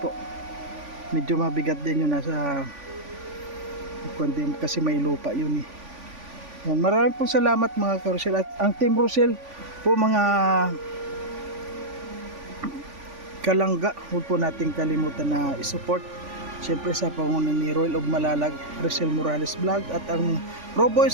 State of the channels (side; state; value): left; late; 3.5 ms